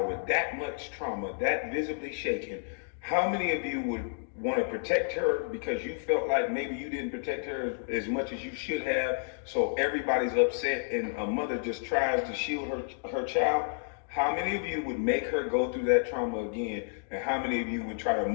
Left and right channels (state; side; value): silent; right; digital silence